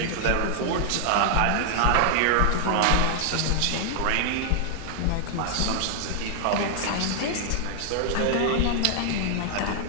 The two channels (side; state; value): both; different; correlation 0.00